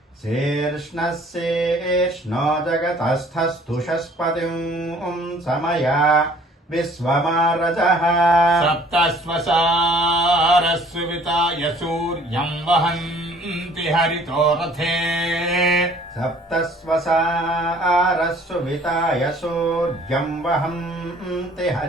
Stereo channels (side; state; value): both; normal; correlation 0.55